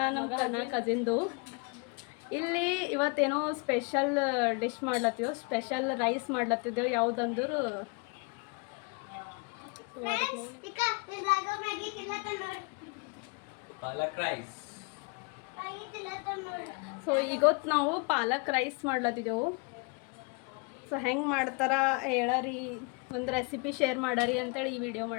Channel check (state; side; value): quieter; right; 32.4 dB